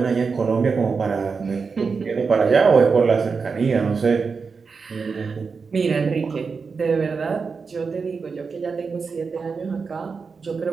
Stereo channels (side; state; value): left; quieter; 5.1 dB